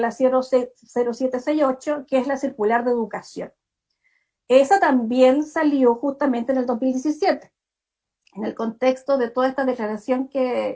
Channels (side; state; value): both; identical; correlation 1.00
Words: 0768, que es la circular de educación. Esa también salió justamente en el 2017, en el contexto de toda esta declaración